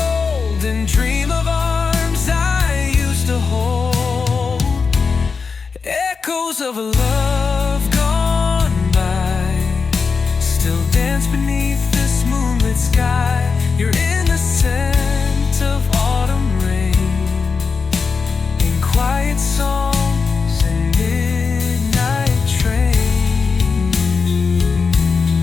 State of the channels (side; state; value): right; quieter; 5.1 dB